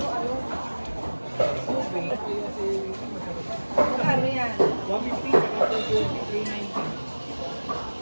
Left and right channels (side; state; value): both; inverted; correlation -1.00